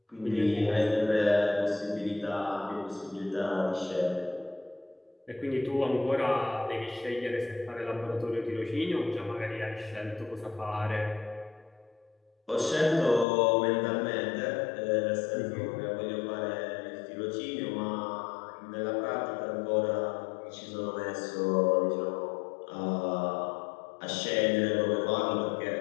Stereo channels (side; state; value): right; drops out; at 13.2 s